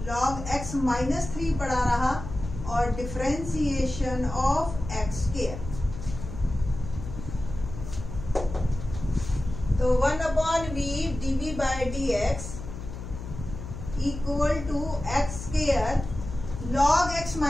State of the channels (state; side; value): noise; left; hum, 9 dB below the sound